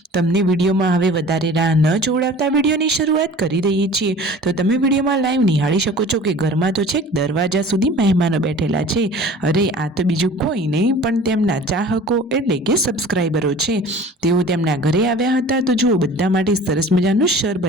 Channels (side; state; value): both; normal; correlation 0.44